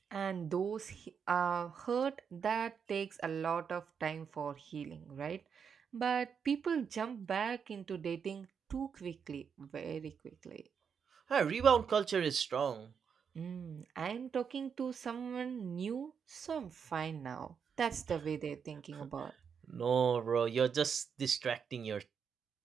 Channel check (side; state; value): left; quieter; 6.8 dB